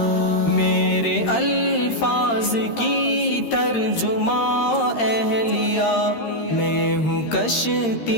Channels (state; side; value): late; right; 13 ms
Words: میرے الفاظ کی ترجمہ اہلیہ، میں ہوں